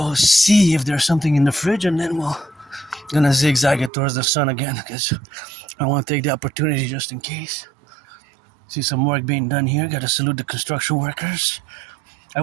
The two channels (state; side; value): drops out; left; at 3.9 s